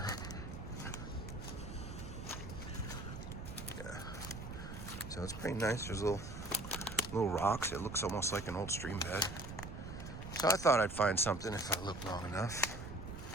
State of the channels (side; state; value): right; noise; rumble, 9 dB below the sound